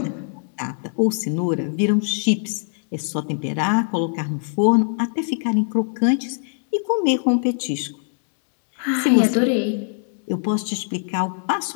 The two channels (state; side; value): silent; right; digital silence